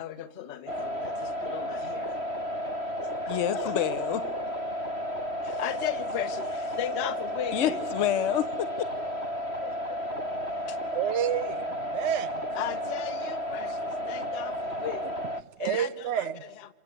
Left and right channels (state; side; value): late; left; 3.1 ms